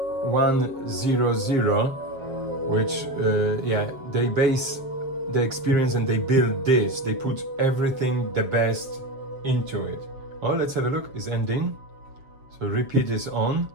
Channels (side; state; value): left; late; 7.4 ms